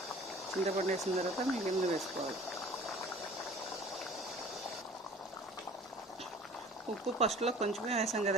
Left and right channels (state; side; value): normal; both; correlation 0.46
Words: చింతపండు వేసిన తర్వాత మిగిలిన వేసుకోవాలి. ఉప్పు ఫస్ట్లో కొంచెమే వేసాం